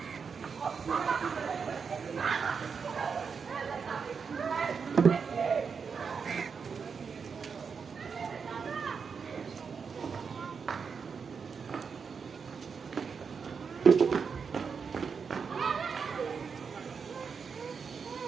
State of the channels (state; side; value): quieter; left; 5.9 dB